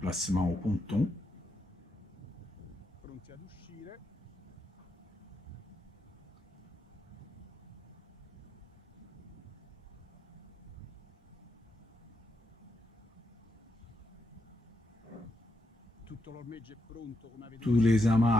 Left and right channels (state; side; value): normal; both; correlation 0.82